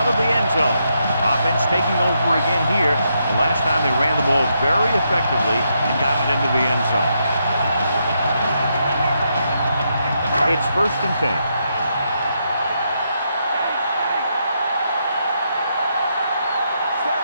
of the end zone. Offense taking over again here. The last time they ran the ball very effectively and got it into the end zone. It's 1st and 10.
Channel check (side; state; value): both; inverted; correlation -0.80